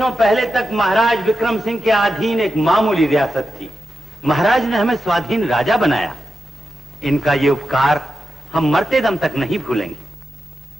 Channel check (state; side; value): normal; both; correlation 0.89